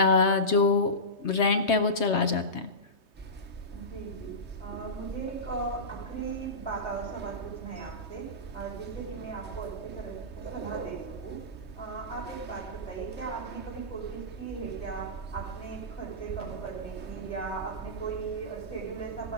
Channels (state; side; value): late; right; 3.2 ms